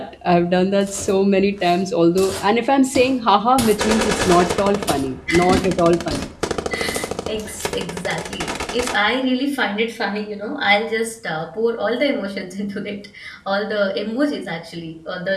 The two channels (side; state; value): both; identical; correlation 1.00